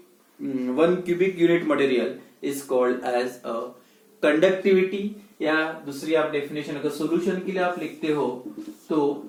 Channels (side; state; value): both; identical; correlation 1.00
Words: 1 cubic unit material is called as a conductivity. या दूसरी आप डेफिनेशन अगर सोल्यूशन के लिए आप लिखते हो, तो